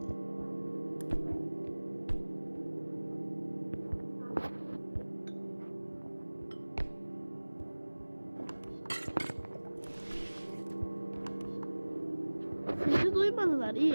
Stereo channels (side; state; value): both; inverted; correlation -1.00